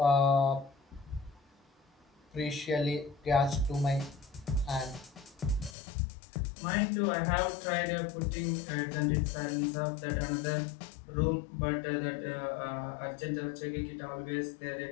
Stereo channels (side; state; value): right; drops out; at 5.8 s